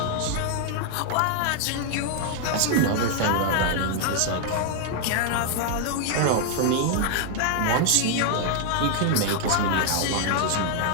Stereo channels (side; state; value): both; different; correlation 0.00